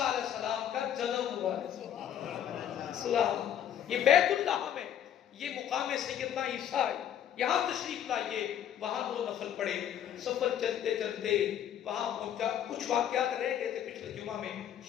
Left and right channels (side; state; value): right; quieter; 10.1 dB